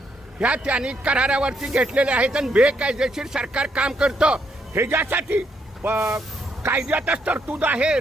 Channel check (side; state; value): both; normal; correlation 0.75